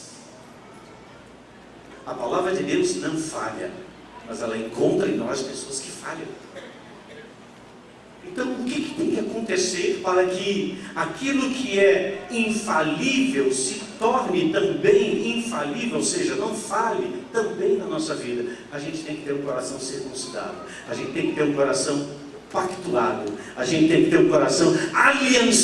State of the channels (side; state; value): both; identical; correlation 1.00